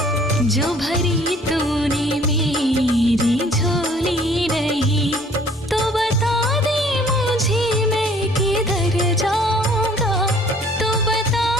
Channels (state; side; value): normal; both; correlation 0.56